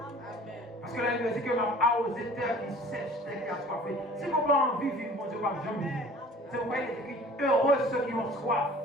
Parce que la Bible dit que même arroser terre qui sèche, terre qui a soifé. Si vous n'avez pas envie de vivre, mon Dieu, pas jamais vivre. C'est pourquoi il est écrit heureux ceux qui ont soif,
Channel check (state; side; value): normal; both; correlation 0.48